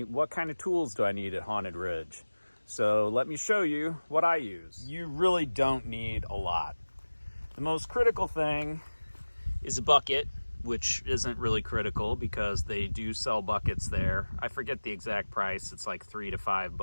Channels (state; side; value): inverted; both; correlation -1.00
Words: what kind of tools do I need at Haunted Ridge? So let me show you what I use. You really don't need a lot. The most critical thing is a bucket, which isn't really critical because they do sell buckets there. I forget the exact price. It's like $3 to